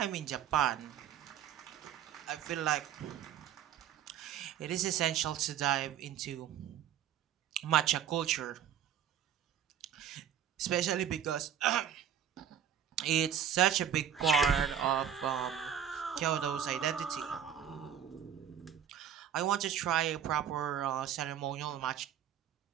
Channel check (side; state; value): left; quieter; 9.4 dB